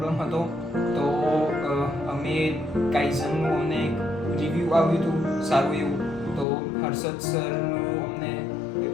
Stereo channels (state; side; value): drops out; right; at 6.5 s